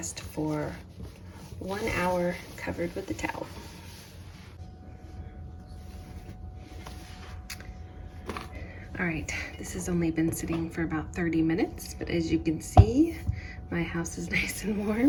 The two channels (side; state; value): both; identical; correlation 1.00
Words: for 1 hour covered with the towel. All right, this has only been sitting for about 30 minutes, but as you can see, my house is nice and